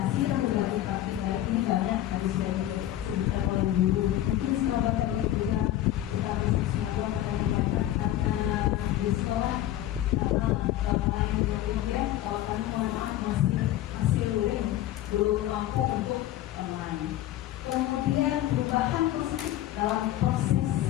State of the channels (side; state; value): right; quieter; 13.3 dB